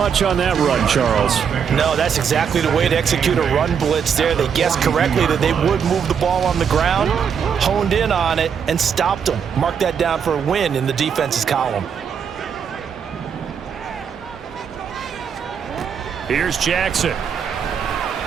on that run, Charles. No, that's exactly the way to execute a run blitz there. They guessed correctly that they would move the ball on the ground, honed in on it, and stopped them. Mark that down for a win in the defense's column. Here's Jackson.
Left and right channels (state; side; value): quieter; left; 7.3 dB